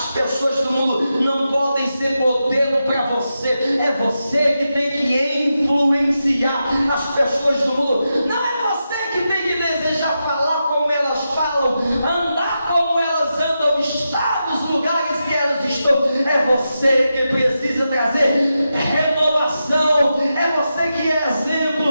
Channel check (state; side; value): inverted; both; correlation -0.88